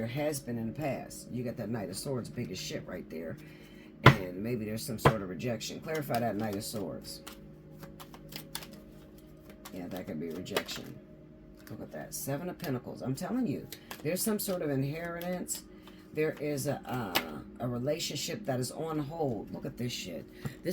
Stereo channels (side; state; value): both; identical; correlation 1.00